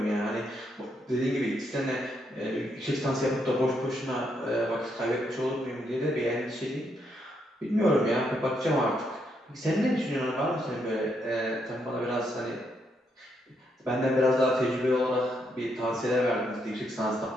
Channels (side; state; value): both; normal; correlation 0.77